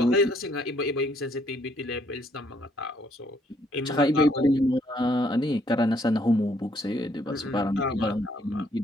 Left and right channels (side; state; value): both; normal; correlation 0.68